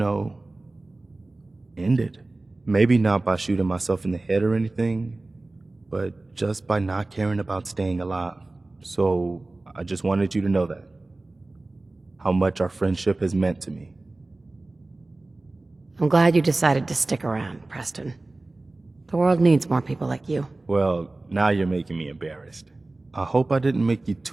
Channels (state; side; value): quieter; left; 3.0 dB